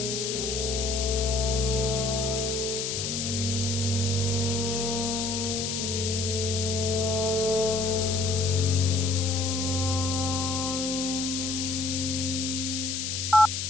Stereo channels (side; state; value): left; noise; hiss, 2 dB below the sound